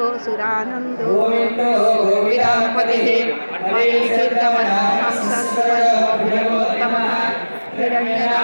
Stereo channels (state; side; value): inverted; both; correlation -1.00